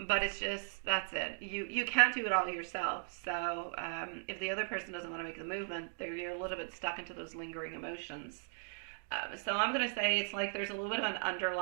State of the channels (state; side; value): silent; left; 53 dB below the other